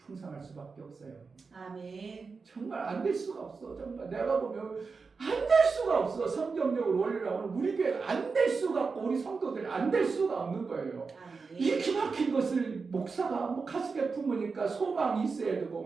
수밖에 없어요. 아멘. 정말 안 될 수가 없어. 정말 내가 보면 안 될 수가 없어. 성경적으로 원리라고는 우리 교회가 안 될 수가 없고 우리 성도들이 안 될 수가 없는 거예요. 아멘. 이 기막힌 것을 목사가 뭐 가슴에 품으니까 소망이 있어야 되고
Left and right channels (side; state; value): left; quieter; 4.7 dB